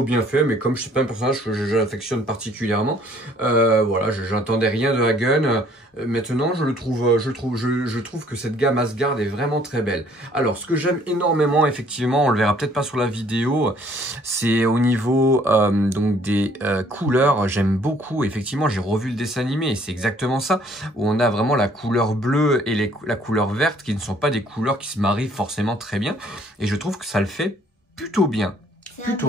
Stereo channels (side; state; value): both; normal; correlation 0.60